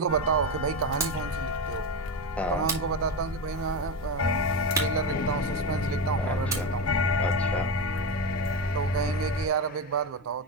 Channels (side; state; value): both; normal; correlation 0.16